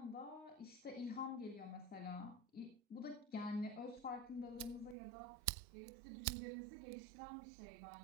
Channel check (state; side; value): drops out; left; at 5.0 s